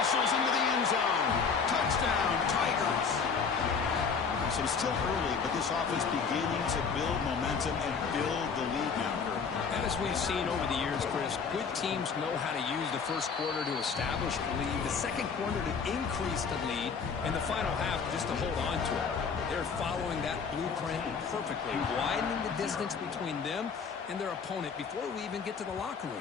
into the end zone. Touchdown, Tigers. So it's still early, but this offense beginning to build momentum and build the lead now, Kurt. As we've seen over the years, Chris, good teams know how to use the first quarter to establish the lead, the second quarter to increase the lead, and the final half just to hold on to it. They're following that blueprint perfectly, widening the distance between them and their opponent before we even get to the locker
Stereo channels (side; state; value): right; quieter; 5.7 dB